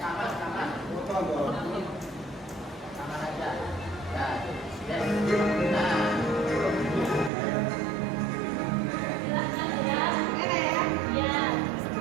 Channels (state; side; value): drops out; left; at 7.3 s